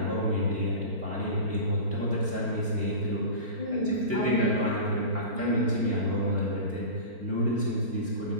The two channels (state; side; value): late; left; 4.4 ms